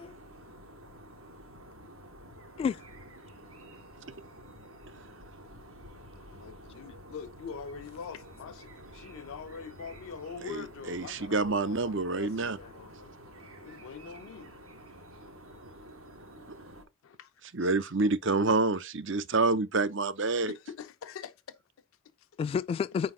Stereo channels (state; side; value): normal; both; correlation 0.02